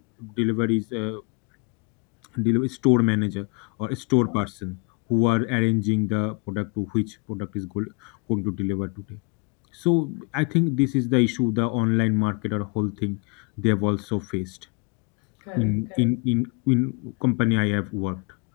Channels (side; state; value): right; quieter; 32.5 dB